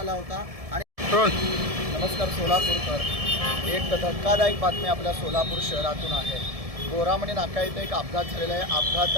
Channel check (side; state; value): left; late; 1.7 ms